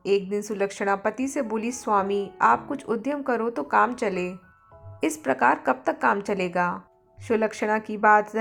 एक दिन सुलक्षणा पति से बोली, स्वामी आप कुछ उद्यम करो तो काम चले। इस प्रकार कब तक काम चलेगा? सुलक्षणा की बात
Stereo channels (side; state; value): both; identical; correlation 1.00